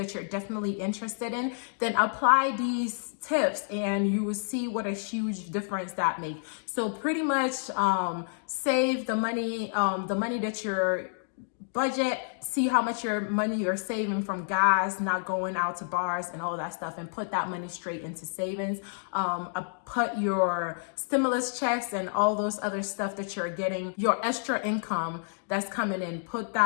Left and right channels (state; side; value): silent; right; digital silence